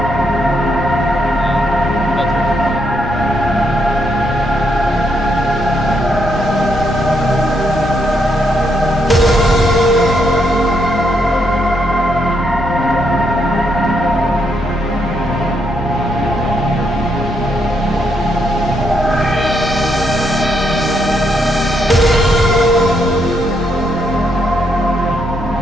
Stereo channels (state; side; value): normal; both; correlation 0.77